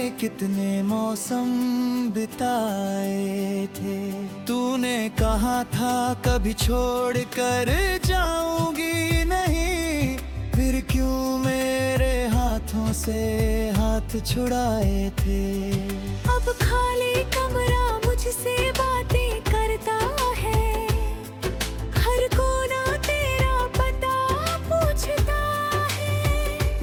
कितने मौसम बिताए थे। तूने कहा था कभी छोड़ कर जाऊंगी नहीं, फिर क्यों मेरे हाथों से हाथ छुड़ाए थे। अब खाली कमरा मुझसे बातें करता है, हर कोना तेरा पता पूछता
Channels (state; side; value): identical; both; correlation 1.00